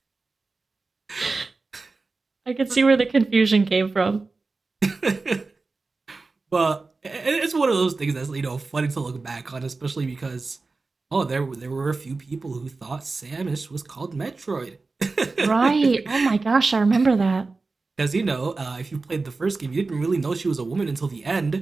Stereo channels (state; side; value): quieter; left; 3.8 dB